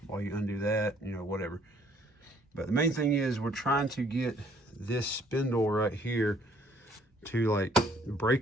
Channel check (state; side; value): normal; both; correlation 0.62